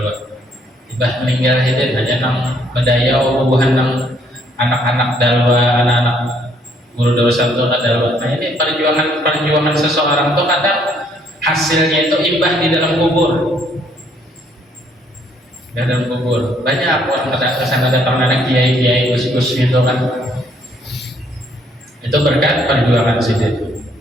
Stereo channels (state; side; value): normal; both; correlation 0.67